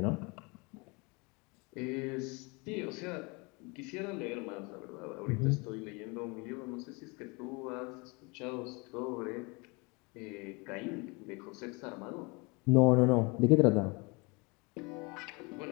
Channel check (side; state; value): right; quieter; 28.7 dB